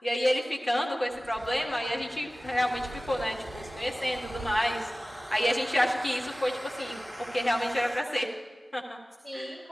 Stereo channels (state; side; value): normal; both; correlation 0.97